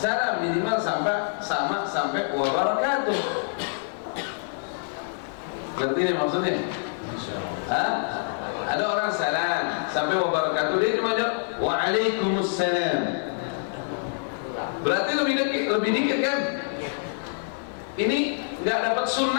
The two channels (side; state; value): right; silent; 61 dB below the other